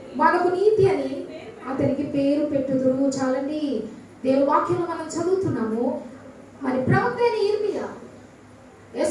మనకు నీతి అని అతనికి పేరు పెట్టుదురు. చాలండి, దేవుని వాక్యం మనం చదువుతున్నాము. మరి ప్రవక్త అయిన ఇర్మియా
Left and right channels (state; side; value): identical; both; correlation 1.00